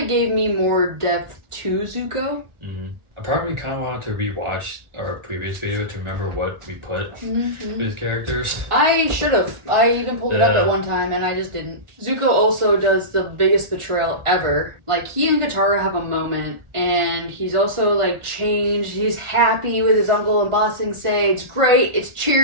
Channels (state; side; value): late; left; 1.4 ms